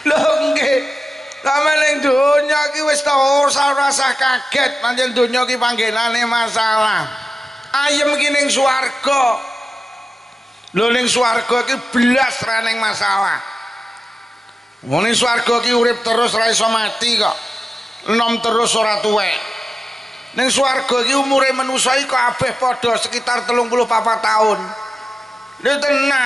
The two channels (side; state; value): both; normal; correlation 0.93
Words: Lho nggih. Sampe ning donya ki wis ta ora usah kaget, pancen donya ki panggenane masalah. Ayem ki ning swarga. Lho ning swarga ki blas ra ning masalah. Wong ning swarga ki urip terus ra iso mati kok. Enom terus ora tuwek. Ning swarga ki umure manusa iki kabeh padha sekitar 34 tahun. Lho